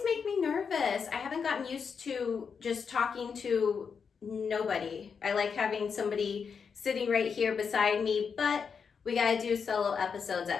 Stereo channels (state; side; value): quieter; right; 6.1 dB